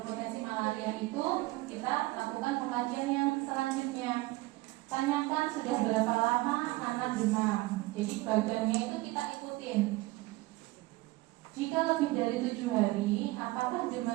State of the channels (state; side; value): quieter; left; 20.4 dB